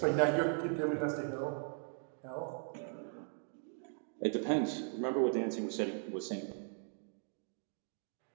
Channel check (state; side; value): silent; left; 52 dB below the other